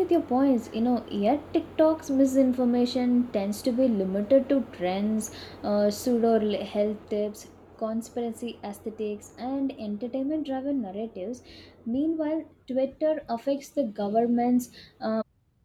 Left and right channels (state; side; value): identical; both; correlation 1.00